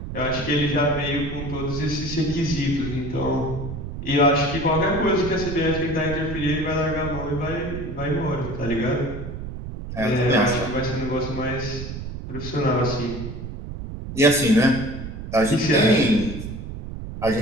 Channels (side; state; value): right; noise; rumble, 8 dB below the sound